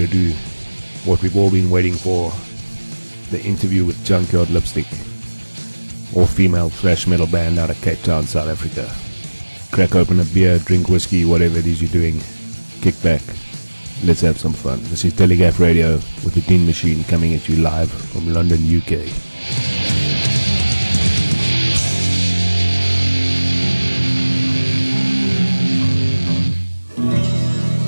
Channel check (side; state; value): both; inverted; correlation -1.00